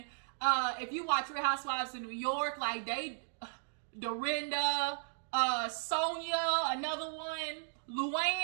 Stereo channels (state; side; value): silent; left; digital silence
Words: If you watch Real Housewives in New York, like Dorinda, Sonia, another one,